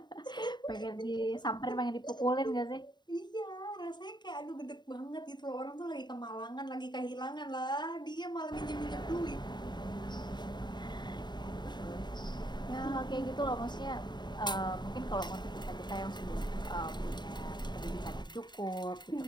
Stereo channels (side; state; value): right; late; 0.21 ms